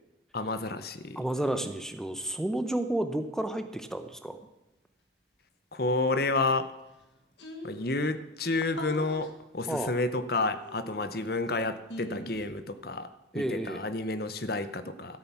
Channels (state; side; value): normal; both; correlation 0.31